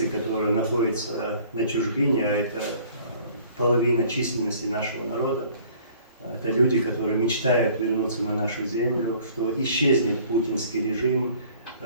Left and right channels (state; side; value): inverted; both; correlation -0.54